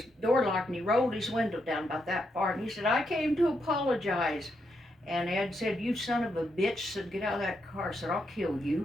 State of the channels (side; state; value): both; normal; correlation 0.81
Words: door locked, and he rolled his window down about that far, and he said, I came to apologize. And Ed said, you son of a bitch, said, get out of that car. I said, I'll kill